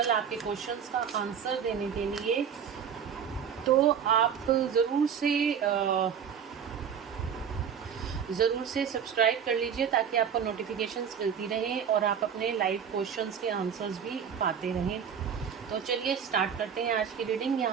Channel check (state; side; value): quieter; left; 7.7 dB